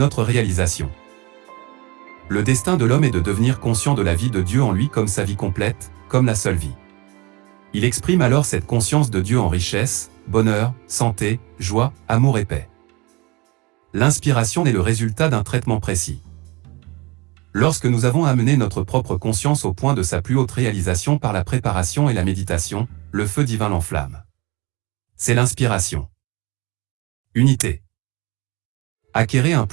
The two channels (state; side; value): quieter; left; 24.7 dB